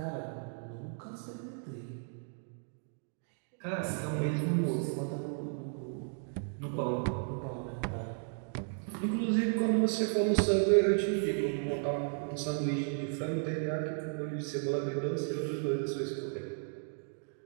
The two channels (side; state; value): left; silent; 55 dB below the other